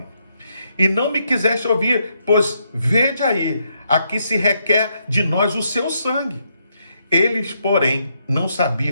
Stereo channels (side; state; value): both; inverted; correlation -0.77